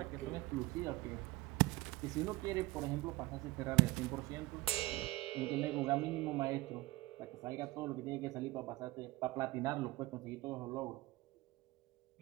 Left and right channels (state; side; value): quieter; left; 20.2 dB